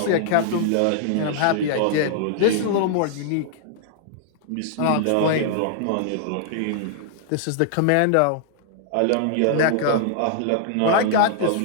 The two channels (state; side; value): different; both; correlation -0.01